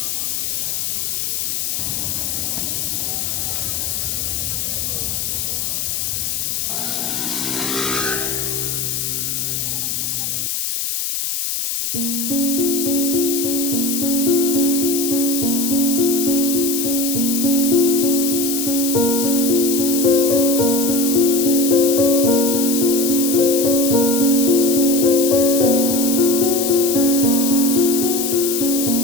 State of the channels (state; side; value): noise; left; hiss, 1 dB below the sound